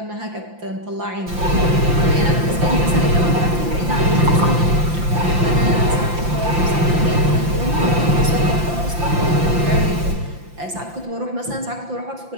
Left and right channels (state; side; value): late; left; 5.8 ms